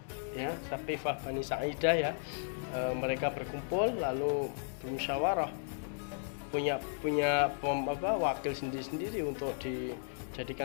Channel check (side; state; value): right; silent; 54 dB below the other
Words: ya, Saqifah Bani Sa'idah ya. Mereka berkumpul lalu bermusyawarah, punya wakil sendiri-sendiri untuk dijadikan